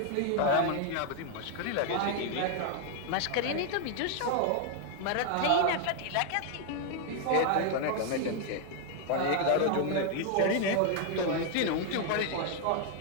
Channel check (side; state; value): both; different; correlation 0.00